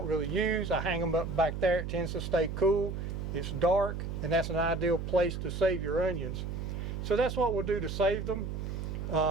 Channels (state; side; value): noise; right; hum, 5 dB below the sound